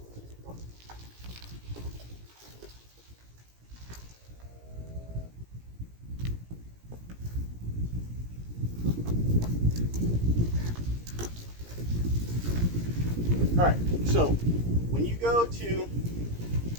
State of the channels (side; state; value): left; late; 17 ms